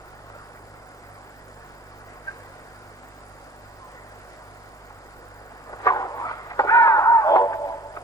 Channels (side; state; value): both; normal; correlation 0.50